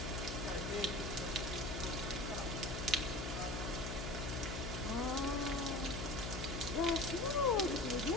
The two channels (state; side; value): noise; left; hum, 4 dB below the sound